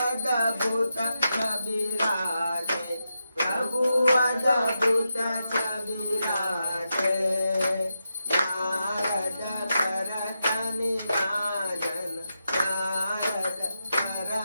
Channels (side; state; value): both; inverted; correlation -0.87